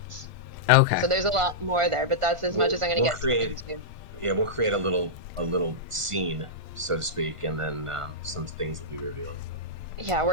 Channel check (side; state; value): left; late; 1.5 ms